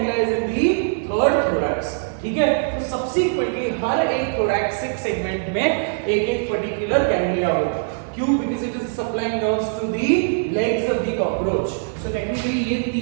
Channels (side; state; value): left; silent; digital silence